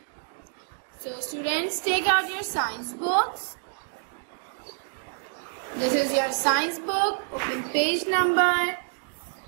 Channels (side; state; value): left; silent; digital silence